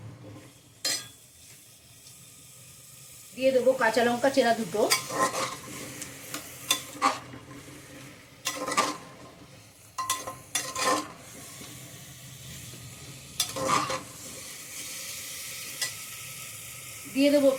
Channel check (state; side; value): identical; both; correlation 1.00